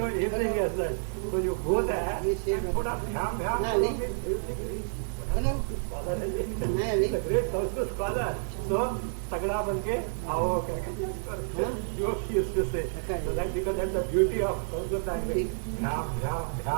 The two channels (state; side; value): silent; left; 58 dB below the other